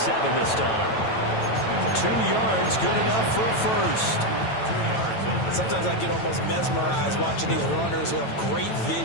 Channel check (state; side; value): late; right; 9.1 ms